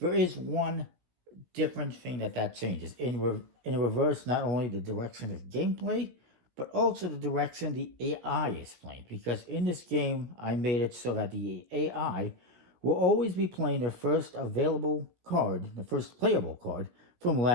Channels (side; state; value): left; late; 17 ms